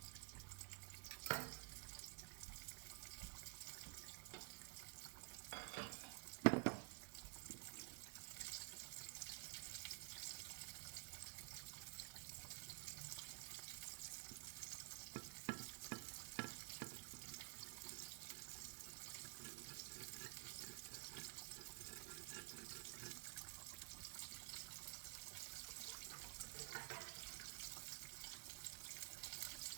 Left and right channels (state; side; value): quieter; left; 34.0 dB